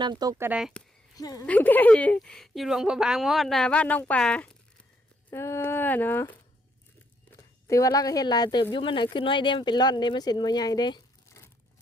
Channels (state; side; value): normal; both; correlation 0.73